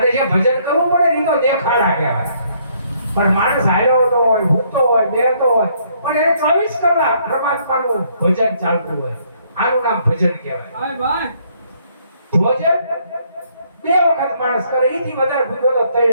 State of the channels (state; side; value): inverted; both; correlation -0.67